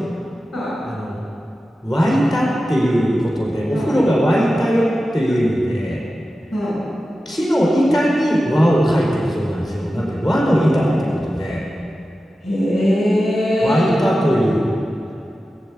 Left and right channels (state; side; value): normal; both; correlation 0.93